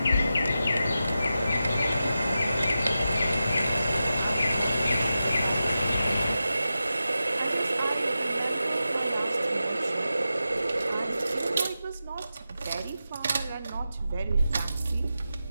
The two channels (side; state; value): both; inverted; correlation -0.91